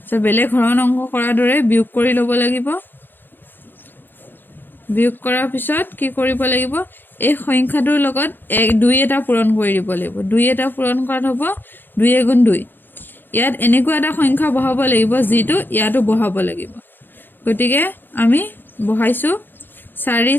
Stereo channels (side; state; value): right; late; 0.095 ms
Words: সো বেলেগ হৰণ অংক কৰাৰ দৰে বিয়োগ কৰি ল'ব লাগিব বিয়োগ কৰাৰ পিছত কি কৰিব লাগিব এই সংখ্যাটোৰ লগত 1 2 এটা পূৰণ কৰি দিব লাগিব 2 এটা পূৰণ কৰাত হ'ব 2 গুণ 2 ইয়াত এনেকুৱা এটা সংখ্যা বহাব লাগিব যেটো ইয়াতো বহাব লাগিব গতিকে আমি বহাইছো 4